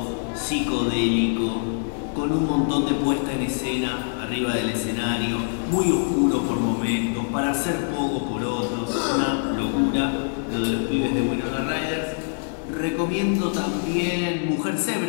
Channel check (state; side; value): silent; right; 58 dB below the other